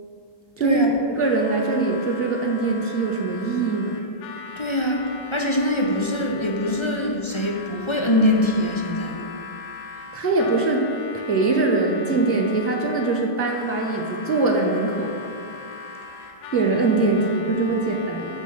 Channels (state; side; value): late; right; 1.3 ms